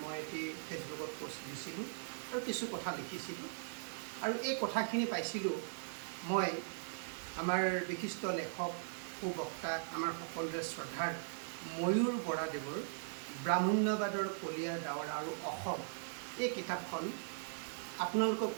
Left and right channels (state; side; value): silent; left; digital silence